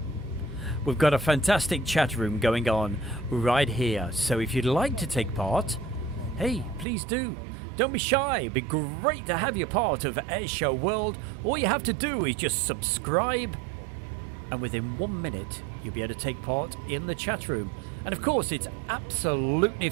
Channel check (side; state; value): left; drops out; at 6.9 s